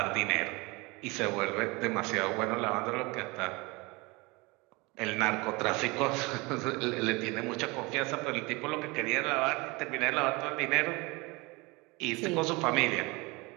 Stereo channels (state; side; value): quieter; left; 25.0 dB